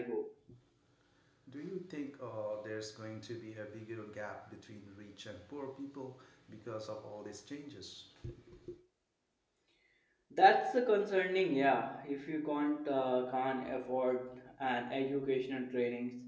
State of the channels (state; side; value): identical; both; correlation 1.00